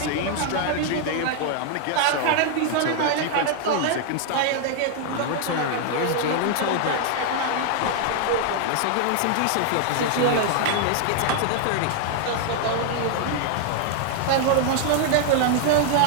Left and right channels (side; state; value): both; different; correlation 0.00